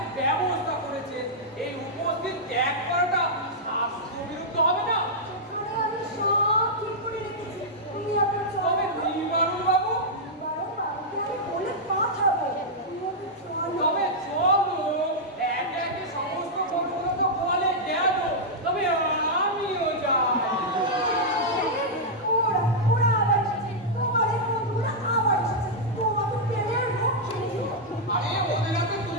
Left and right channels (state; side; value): normal; both; correlation -0.07